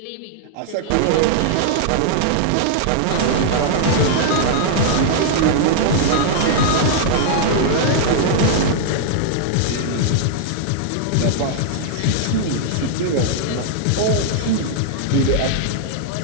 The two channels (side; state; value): both; different; correlation -0.01